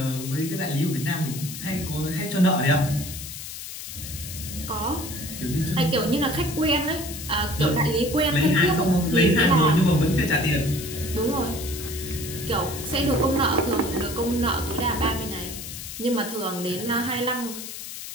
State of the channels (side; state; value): left; noise; hiss, 10 dB below the sound